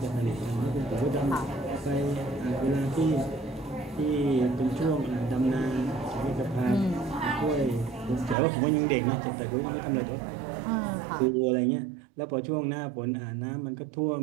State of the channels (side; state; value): left; drops out; at 8.3 s